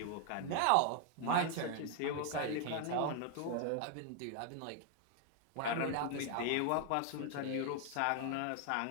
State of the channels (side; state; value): both; different; correlation 0.00